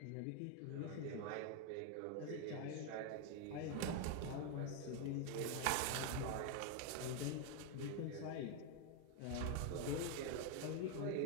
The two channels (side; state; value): both; different; correlation 0.01